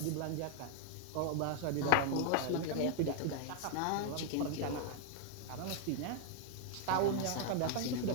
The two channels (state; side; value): different; both; correlation 0.00